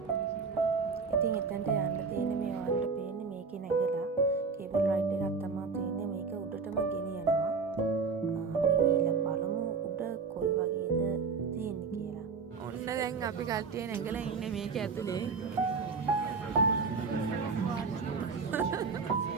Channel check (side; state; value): left; quieter; 4.9 dB